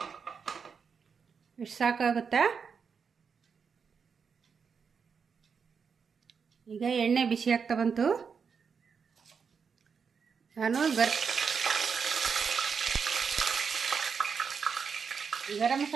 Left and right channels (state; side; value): quieter; left; 6.0 dB